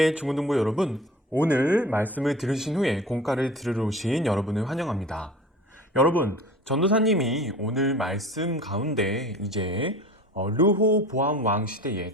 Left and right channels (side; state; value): both; normal; correlation 0.40